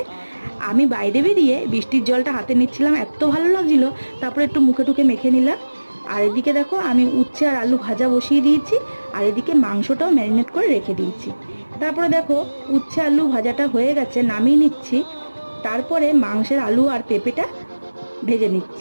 আমি বাইরে বেরিয়ে বৃষ্টির জলটা হাতে নিচ্ছিলাম, এত ভালো লাগছিল। তারপরে একটু মুখে টুকে মেখে নিলাম। আর এদিকে দেখো আমি উচ্ছে আর আলু ভাজা বসিয়ে দিয়েছি, আর এদিকে মাংসটাও ম্যারিনেট করে রেখে দিয়েছি। তারপরে দেখো উচ্ছে আলু ভাজাটা হয়ে গেছে, নামিয়ে নিচ্ছি। তারপরে মাংসের আলু আর পেঁপেটা ভেজে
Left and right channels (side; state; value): both; inverted; correlation -1.00